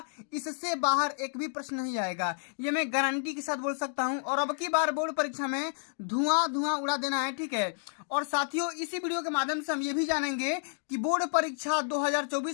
इससे बाहर एक भी प्रश्न नहीं आएगा, ये मैं गारंटी के साथ बोल सकता हूं। और अब की बार बोर्ड परीक्षा में धुआं धुआं उड़ा देना है, ठीक है। और साथियों, इसी वीडियो के माध्यम से हम ये भी जानेंगे कि बोर्ड परीक्षा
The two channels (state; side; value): silent; right; 58 dB below the other